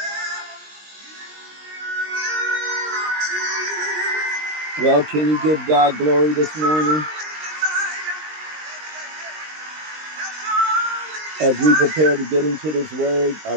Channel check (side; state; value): left; late; 19 ms